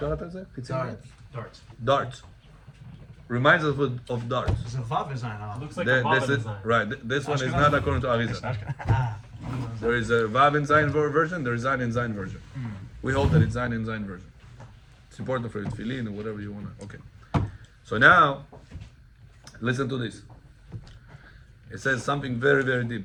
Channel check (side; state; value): both; identical; correlation 1.00